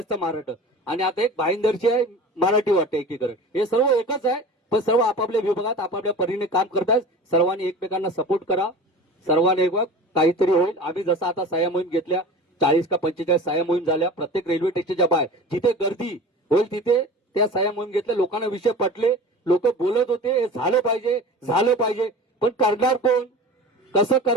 महाराष्ट्र, आणि आता एक भाईंदरची आहे मराठी वाटते एकीकरण. हे सर्व एकच आहे, पण सर्व आपापल्या विभागात आपापल्या परीने काम करतात. सर्वांनी एकमेकांना सपोर्ट करा, सर्वांनी एक काहीतरी होईल. आम्ही जसं आता सह्या मोहीम घेतल्या, 40 का 45 सह्या मोहीम झाल्या प्रत्येक रेल्वे स्टेशनच्या बाहेर, जिथे गर्दी होईल तिथे त्या सह्या मोहीम घेतल्या. लोकांना विषय पटले, लोक बोलत होते हे झालं पाहिजे झालं पाहिजे, पण करणार कोण, कसं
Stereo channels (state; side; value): normal; both; correlation 0.36